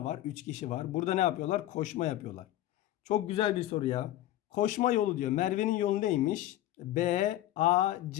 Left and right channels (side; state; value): right; quieter; 14.1 dB